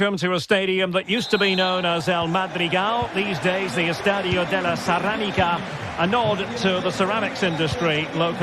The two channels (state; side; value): identical; both; correlation 1.00